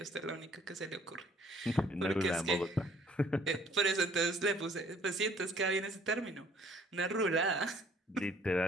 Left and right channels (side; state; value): both; normal; correlation 0.59